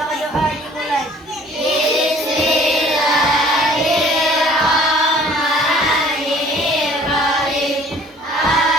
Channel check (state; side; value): normal; both; correlation 0.53